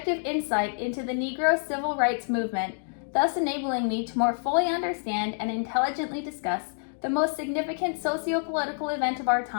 insight into the Negro civil rights movement, thus enabling me to more fully understand and intelligently discuss the most significant socio-political event of our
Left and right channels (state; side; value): silent; right; digital silence